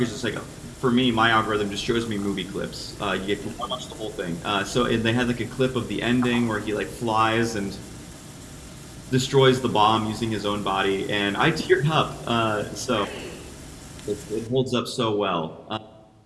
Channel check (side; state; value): both; identical; correlation 1.00